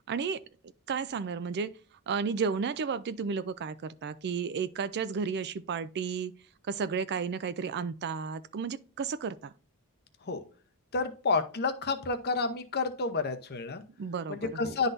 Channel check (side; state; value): both; normal; correlation -0.11